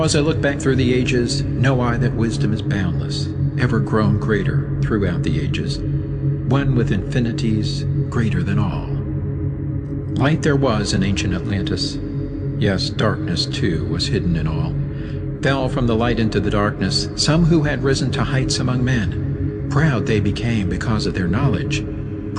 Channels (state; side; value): identical; both; correlation 1.00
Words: as I look back through the ages, know I that wisdom is boundless, ever grown greater throughout the ages, one with infinities greater than all. Light there was in ancient Atlantis. Yes, darkness too was hidden in all. Fell from the light into the darkness some who had risen to heights among men. Proud they became because of their knowledge.